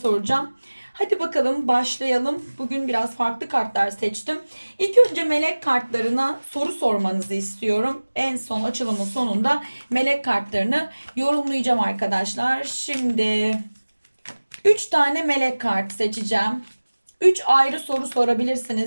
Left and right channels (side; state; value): both; inverted; correlation -1.00